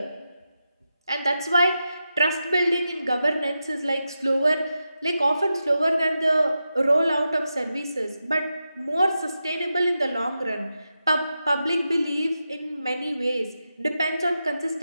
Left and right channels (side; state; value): both; inverted; correlation -0.89